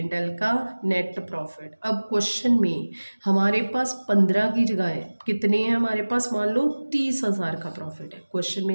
एल का नेट प्रॉफिट। अब क्वेश्चन में हमारे पास 15 की जगह है, कितने हैं हमारे पास, मान लो 30,000 का प्रॉफिट है। क्वेश्चन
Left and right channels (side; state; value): both; inverted; correlation -1.00